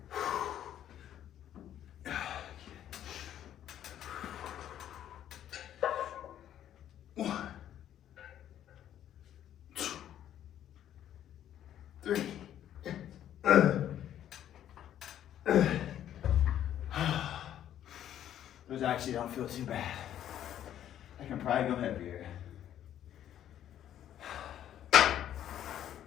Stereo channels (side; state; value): right; quieter; 11.0 dB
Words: Those actually don't feel too bad. I can probably go heavier. I